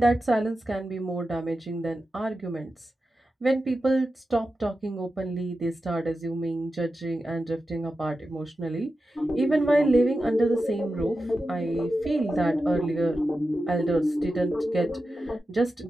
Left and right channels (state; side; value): normal; both; correlation 0.91